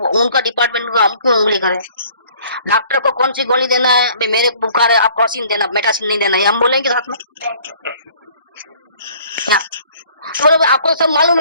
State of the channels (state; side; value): inverted; both; correlation -0.56